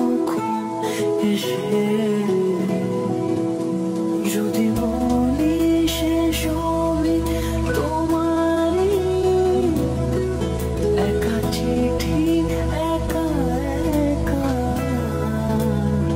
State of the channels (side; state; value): both; identical; correlation 1.00